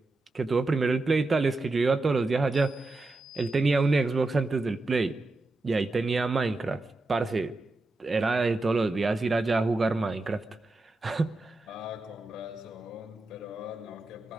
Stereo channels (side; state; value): left; quieter; 3.0 dB